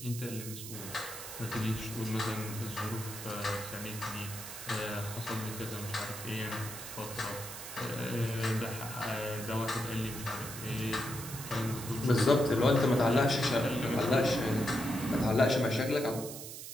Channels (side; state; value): right; noise; hiss, 10 dB below the sound